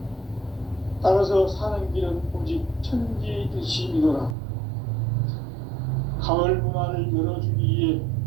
따라서 사는 길은 오직 천지일심이노라. 가을 문화를 열어주기 위해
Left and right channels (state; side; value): drops out; left; at 4.4 s